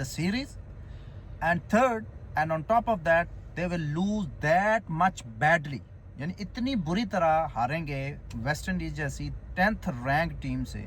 the series. And third, and on top of that, they will lose that much badly. यानी इतनी बुरी तरह हारेंगे West Indies जैसी 10th rank team से,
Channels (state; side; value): identical; both; correlation 1.00